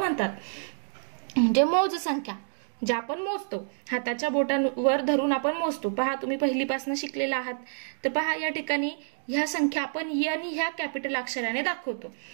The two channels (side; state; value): left; silent; digital silence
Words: म्हणजे मोज संख्या ज्या आपण मोजतो, हाताच्या बोटांवर धरून आपण मोजतो. पहा तुम्ही पहिलीपासून शिकलेला आहात. तर पहा या ठिकाणी ह्या संख्या आपण n ह्या कॅपिटल अक्षराने दाखवतो.